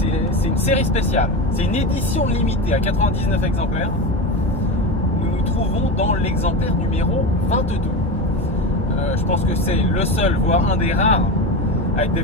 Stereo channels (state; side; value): normal; both; correlation 0.23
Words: une série spéciale. C'est une édition limitée à 99 exemplaires. Nous nous trouvons dans l'exemplaire numéro 22. Je pense que c'est le seul, voire un des rares, à être